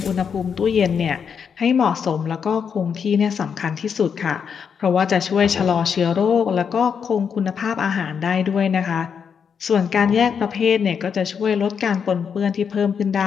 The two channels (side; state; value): right; quieter; 6.9 dB